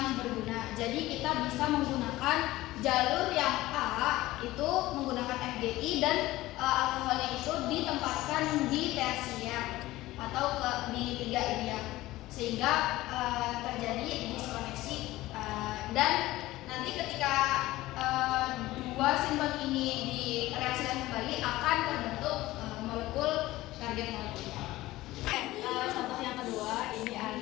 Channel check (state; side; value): quieter; right; 17.4 dB